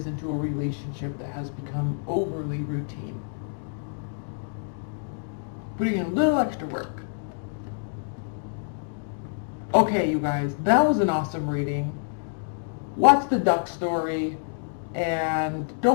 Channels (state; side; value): silent; right; digital silence